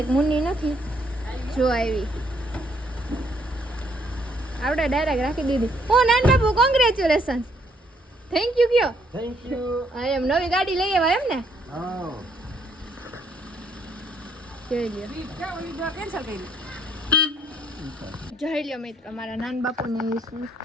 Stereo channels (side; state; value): both; normal; correlation 0.69